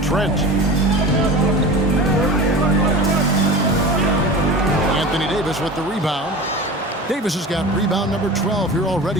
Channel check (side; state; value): both; normal; correlation 0.33